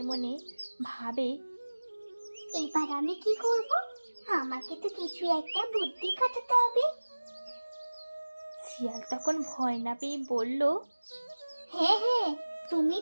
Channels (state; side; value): inverted; both; correlation -1.00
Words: মনে ভাবে, এবার আমি কি করব? আমাকে তো কিছু একটা বুদ্ধি খাটাতে হবে। শিয়াল তখন ভয় না পেয়ে বলল, হ্যাঁ হ্যাঁ, তুমি